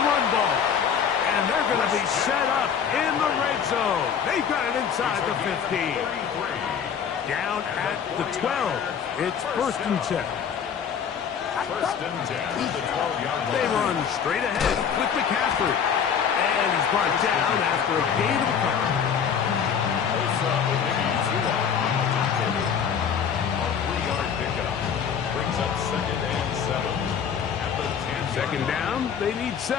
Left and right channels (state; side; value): quieter; right; 7.5 dB